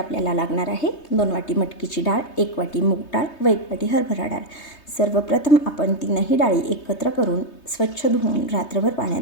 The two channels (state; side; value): late; right; 3.2 ms